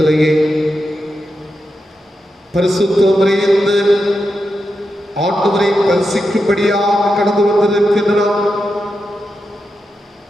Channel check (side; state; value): both; normal; correlation 0.88